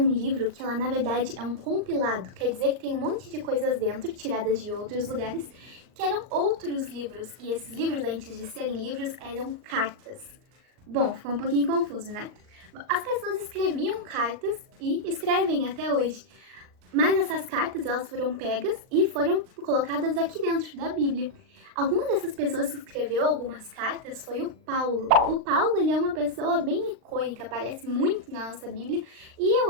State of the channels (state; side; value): late; left; 39 ms